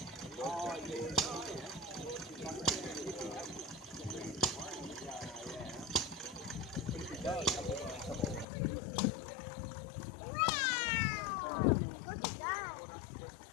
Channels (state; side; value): drops out; right; at 8.5 s